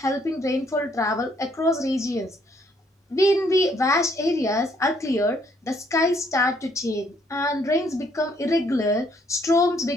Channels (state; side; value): normal; both; correlation 0.67